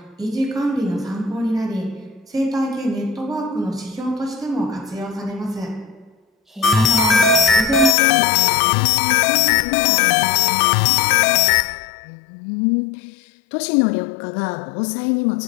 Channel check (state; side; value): drops out; right; at 8.0 s